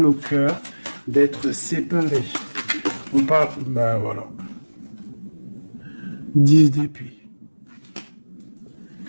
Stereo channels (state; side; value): inverted; both; correlation -1.00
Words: au cœur d'être séparés. On parle, ben voilà. 10 d'épée.